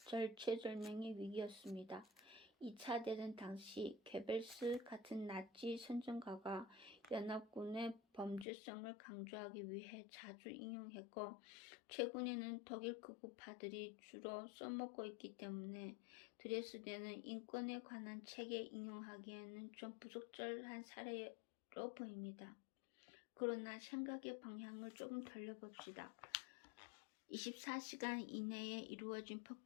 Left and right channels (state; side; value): drops out; right; at 8.5 s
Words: 위기였습니다. 2차 대전 당시 괴벨스 같은 나치 선전가가 연합군의 범죄성을 강조하기 위해 자주 인용했고, 최근에는 독일 극우파들이 주로 써먹고 있기 때문에 드레스덴은 인권에 관한 책에 인용하기에는 좀 부적절한 사례로 보입니다. 그러나 생각의 방향을 조금 돌려봅시다. 24시간 이내에 이루어진